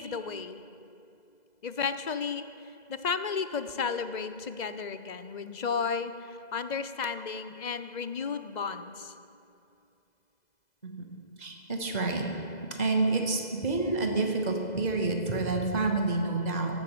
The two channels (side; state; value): right; late; 2.0 ms